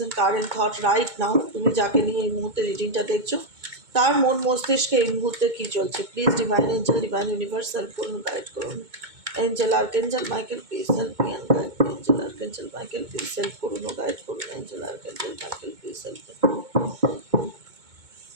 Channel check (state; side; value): late; left; 2.2 ms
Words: current thought right now. তুমি যাকে নিয়ে এই মুহূর্তে রিডিংটা দেখছো তার মন মস্তিষ্কে এই মুহূর্তে কী চলছে। Please divine angel, divine universe help করুন, গাইড করুন। Angel archangel Michael please help me and guide me. Angel archangel Michael please help করুন ও গাইড করুন। Angel archangel Michael please help করুন।